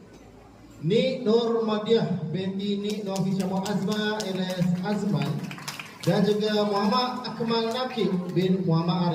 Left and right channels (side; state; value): both; identical; correlation 1.00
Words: Nik Nur Madiah binti Nik Nur Hishamah Azma alias Azman dan juga Muhammad Akmal Nakib bin Muhammad